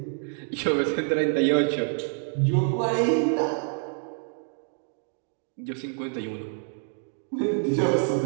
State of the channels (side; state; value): left; silent; 60 dB below the other